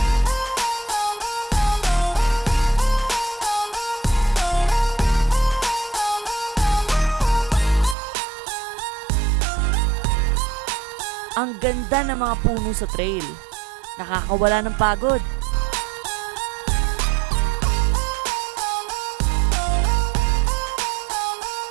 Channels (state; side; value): drops out; left; at 8.0 s